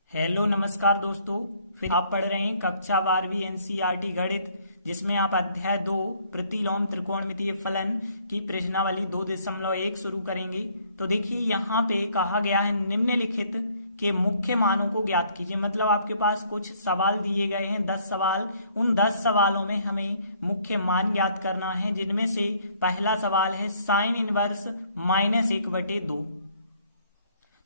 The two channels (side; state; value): both; inverted; correlation -0.63